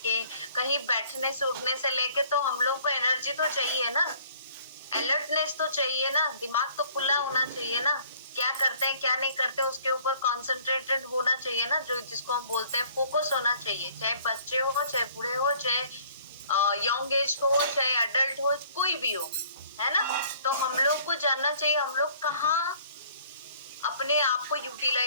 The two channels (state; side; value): inverted; both; correlation -0.57